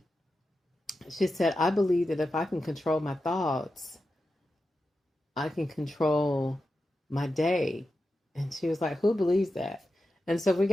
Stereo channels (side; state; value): both; normal; correlation 0.90